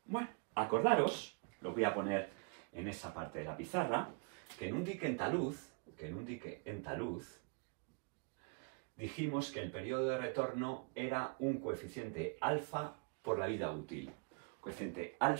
Bueno, acordaros, lo voy a poner en esa parte de la pizarra, que en un dique en talud, dijimos que el periodo de retorno era un coeficiente alfa por la vida útil. coeficiente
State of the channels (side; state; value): left; quieter; 35.3 dB